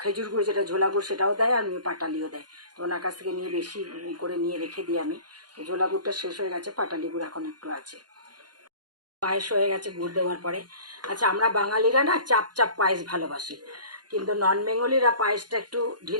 খেজুর গুড়, যেটা ঝোলা গুড় সেটাও দেয়, আর পাটালিও দেয়। তো ওনার কাছ থেকে নিয়ে বেশি করে নিয়ে রেখে দিই আমি। তো ঝোলা গুড়টা শেষ হয়ে গেছে, পাটালি গুড় এখন একটু আছে। পায়েস হয়ে গেছে গুড় দেওয়ার পরে। আচ্ছা, আমরা বাঙালিরা না চাপ চাপ পায়েস ভালোবাসি, কিন্তু নন বেঙ্গলিরা পায়েসটা একটু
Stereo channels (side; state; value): left; late; 0.70 ms